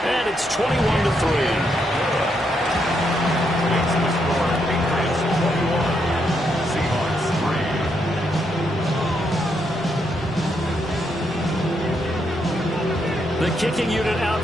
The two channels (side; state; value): both; normal; correlation 0.78